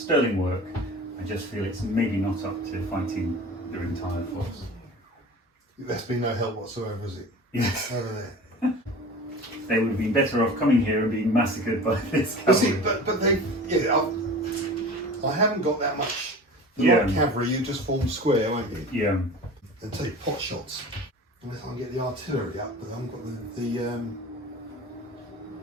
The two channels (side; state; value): both; normal; correlation 0.37